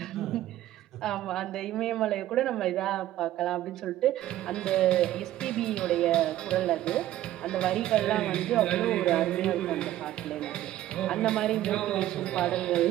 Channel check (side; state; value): left; quieter; 13.8 dB